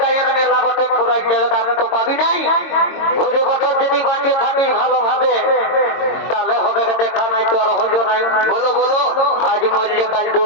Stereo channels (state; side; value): late; right; 22 ms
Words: গায়ের মেলা বটে, ঘোরাই যাবে, আমি তো পাবি নাই। ঘুরে বছর যদি বাঁচিয়ে থাকিস ভালোভাবে, তাহলে হবে দেখা নাই, তো আর হলো নাই। বলো বলো, আজ মরলে কাল